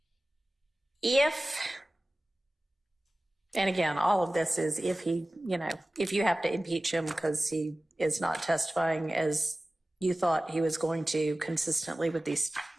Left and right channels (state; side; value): normal; both; correlation 0.97